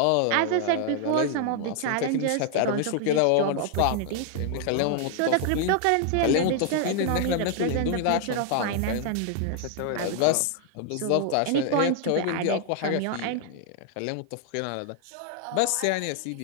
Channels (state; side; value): different; both; correlation 0.00